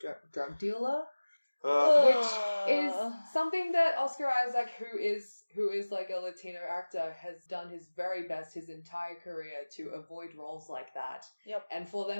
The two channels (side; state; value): both; inverted; correlation -1.00